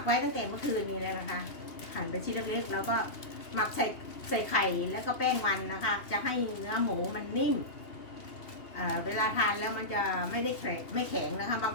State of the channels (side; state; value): right; late; 2.8 ms